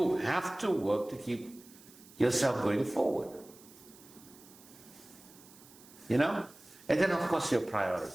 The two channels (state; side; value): noise; right; hiss, 22 dB below the sound